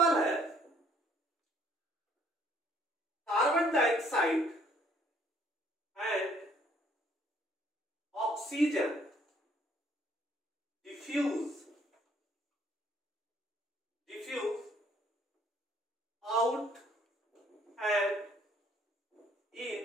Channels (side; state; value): both; normal; correlation 0.63